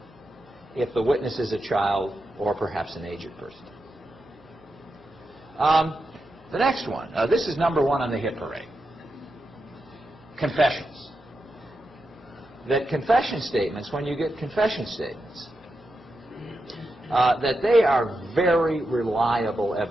if the witness is a child or perhaps an aged person. The next one, this is number one on the hit parade. Confessions. That confession statements, when you get confession statements, that they are very reliable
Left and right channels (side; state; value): right; noise; hum, 30 dB below the sound